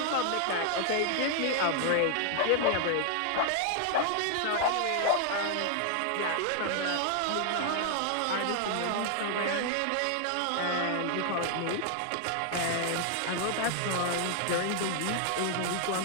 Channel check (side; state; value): both; different; correlation 0.00